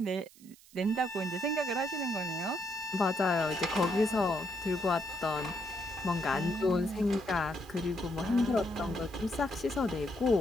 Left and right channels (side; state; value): right; noise; hiss, 24 dB below the sound